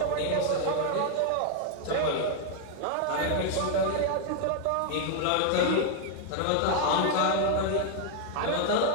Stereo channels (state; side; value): different; both; correlation 0.00